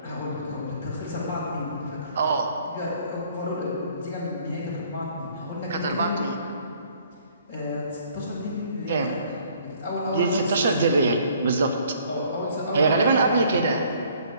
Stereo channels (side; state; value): both; inverted; correlation -0.59